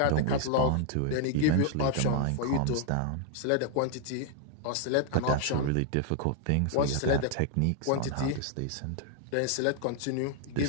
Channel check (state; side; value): different; both; correlation 0.00